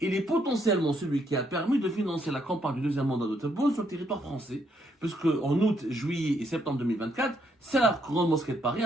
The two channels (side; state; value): both; normal; correlation 0.74